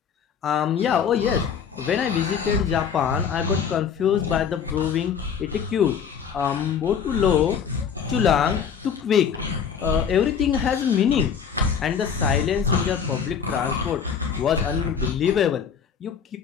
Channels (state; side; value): quieter; right; 7.1 dB